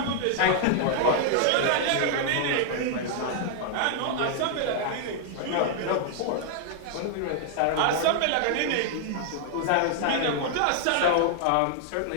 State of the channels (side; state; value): both; different; correlation 0.00